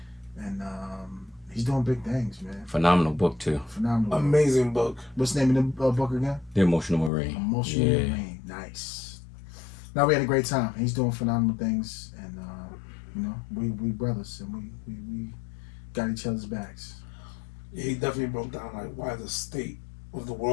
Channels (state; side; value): drops out; right; at 7.1 s